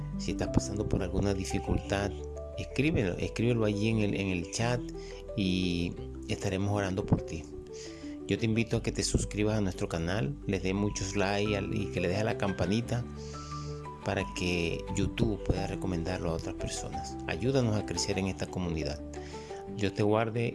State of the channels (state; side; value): identical; both; correlation 1.00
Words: Si estás pasando por alguna dificultad, escríbelo allí en el chat y estaremos orando por ti. Yo te invito a que te suscribas a nuestro canal, les dé muchos likes y que le des a la campanita para que YouTube pueda recomendarlo a otras personas. Ayúdanos a crecer en esta comunidad. Dios te guarde